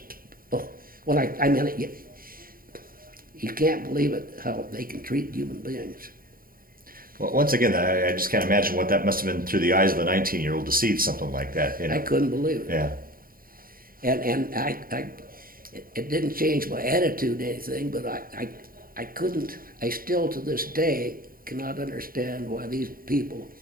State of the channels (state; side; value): late; left; 0.42 ms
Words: Oh, well, I mean, you can't believe it how they can treat human beings. Well, once again, I just can't imagine what that must have been through the eyes of a 19-year-old to see something like that. You know? I couldn't believe it. Yeah. And it didn't change my attitude or anything, but I couldn't, I still to this day cannot understand why these people